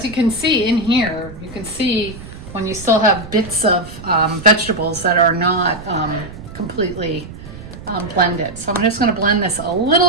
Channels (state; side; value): noise; right; rumble, 14 dB below the sound